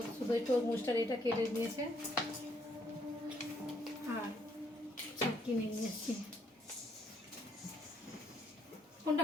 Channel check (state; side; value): normal; both; correlation 0.70